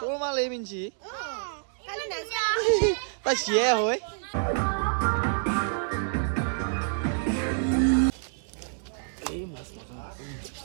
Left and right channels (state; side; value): silent; left; digital silence